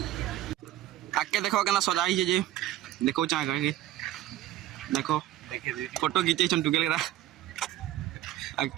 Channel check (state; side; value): quieter; left; 13.5 dB